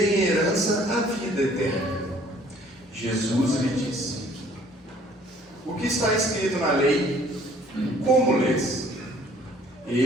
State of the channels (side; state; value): both; normal; correlation 0.57